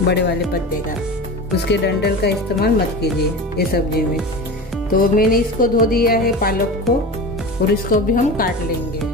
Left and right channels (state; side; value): normal; both; correlation 0.30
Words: बड़े वाले पत्ते का, उसके डंठल का इस्तेमाल मत कीजिए ये सब्जी में। तो मैंने इसको धो दिया है पालक को, और इसको भी हम काट लेंगे।